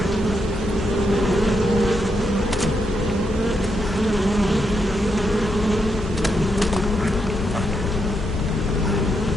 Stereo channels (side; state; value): both; normal; correlation 0.81